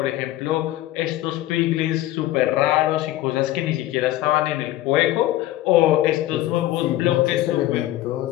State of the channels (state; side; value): quieter; right; 15.2 dB